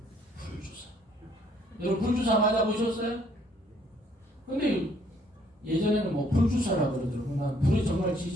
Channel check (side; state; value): both; normal; correlation 0.64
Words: 불주사. 여러분, 불주사 맞아보셨어요? 근데 예전에는 뭐 불주사라고 그러더라고. 난 불에 정말